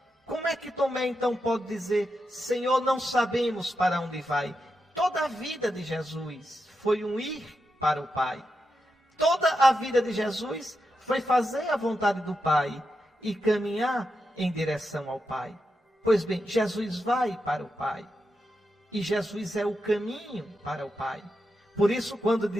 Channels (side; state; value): both; normal; correlation 0.87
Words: Como é que Tomé então pode dizer, Senhor, não sabemos para onde vai? Toda a vida de Jesus foi um ir para o Pai. Toda a vida de Jesus foi fazer a vontade do Pai e caminhar em direção ao Pai. Pois bem, Jesus vai para o Pai. E Jesus é o caminho para o Pai. Por isso, quando